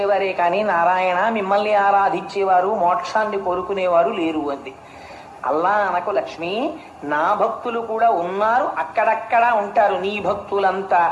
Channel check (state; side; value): identical; both; correlation 1.00